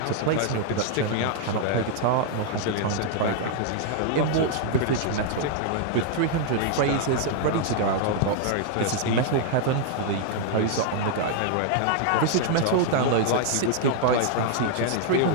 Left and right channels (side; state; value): both; different; correlation -0.01